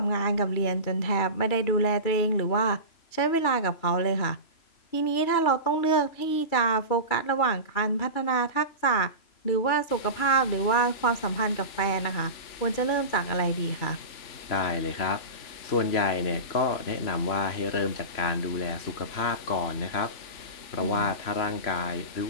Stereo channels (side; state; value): right; late; 3.0 ms